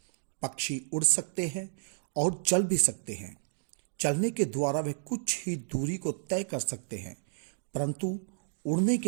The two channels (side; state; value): left; silent; digital silence